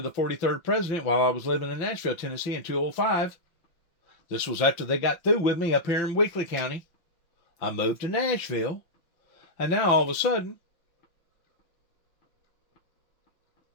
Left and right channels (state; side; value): late; right; 5.9 ms